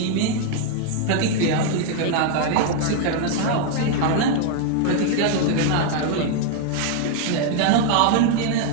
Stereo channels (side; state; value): both; different; correlation 0.00